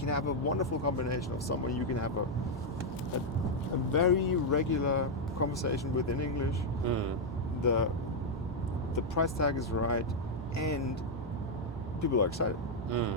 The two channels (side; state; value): both; normal; correlation -0.01